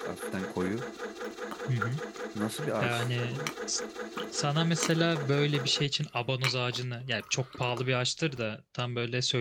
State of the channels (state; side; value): identical; both; correlation 1.00